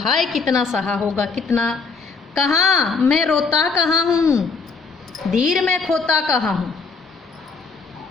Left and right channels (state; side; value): quieter; right; 4.5 dB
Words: कितना सहा होगा, कितना, कहाँ मैं रोता कहाँ हूँ, धीर में खोता कहाँ हूँ।